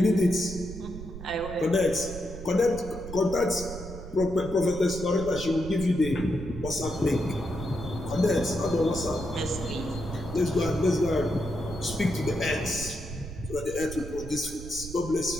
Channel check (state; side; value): noise; right; rumble, 11 dB below the sound